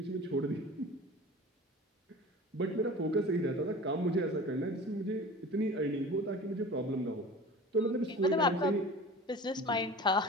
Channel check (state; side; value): normal; both; correlation 0.38